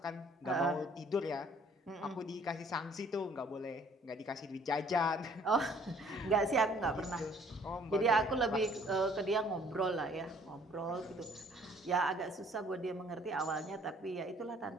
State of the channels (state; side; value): normal; both; correlation 0.58